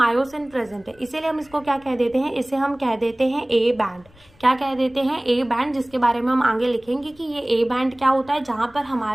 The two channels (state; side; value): noise; left; rumble, 28 dB below the sound